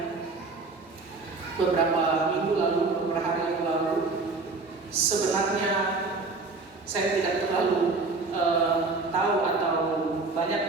beberapa minggu lalu, beberapa hari yang lalu, sebenarnya saya tidak terlalu tahu atau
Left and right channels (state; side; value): quieter; left; 3.8 dB